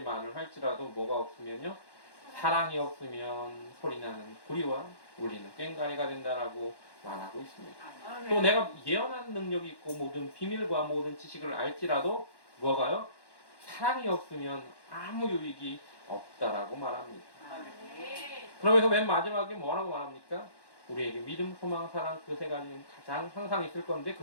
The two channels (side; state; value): right; late; 1.1 ms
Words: 말을 할지라도 뭐가 없으면요, 사랑이 없으면 소리나는 구리와 울리는 꽹과리가 된다라고 말하고 있습니다. 또 내가 예언하는 능력이 있고 모든 비밀과 모든 지식을 알지라도 뭐가요? 사랑이 없으면 아무 유익이 없다라고 말합니다. 그러면서 맨 마지막에 뭐라고 말합니까? 우리에게 믿음, 소망, 사랑 그 세 가지는 가장 항상 있을 건데